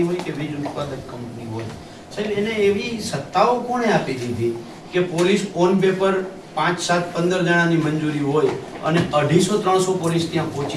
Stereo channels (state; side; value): identical; both; correlation 1.00